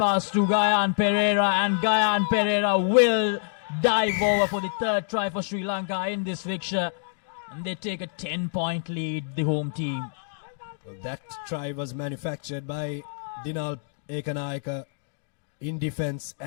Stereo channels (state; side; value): silent; right; digital silence